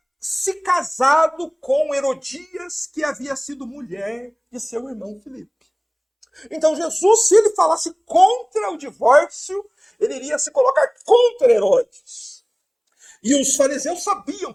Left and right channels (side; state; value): both; identical; correlation 1.00